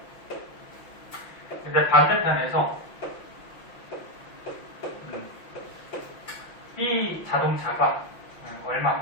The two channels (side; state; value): right; late; 6.0 ms